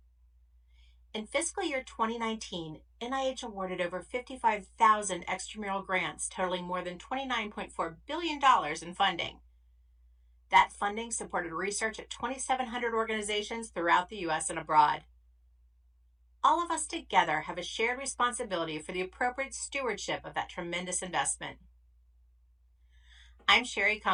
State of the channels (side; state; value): both; identical; correlation 1.00